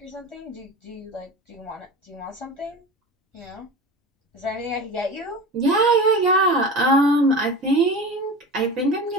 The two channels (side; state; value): both; normal; correlation 0.32